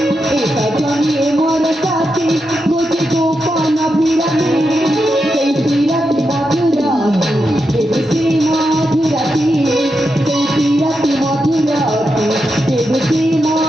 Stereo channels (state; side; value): normal; both; correlation 0.86